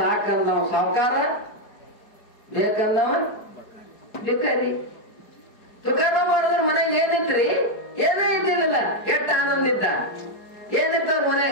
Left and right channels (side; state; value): right; late; 4.7 ms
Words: ಸಾವುಕಾರ, ಬೇಕಂದವ ಭಿಕಾರಿ. ತುಕಾರ ಮಾಡಿದ್ರೆ ಮನೆಗೆ ಏನಿತ್ರಿ? ಏನೂ ಇದ್ದಿಲ್ಲ. ಕೆಟ್ಟ ಆನಂದ ಇದ್ದ. ಏನಿತ್ತ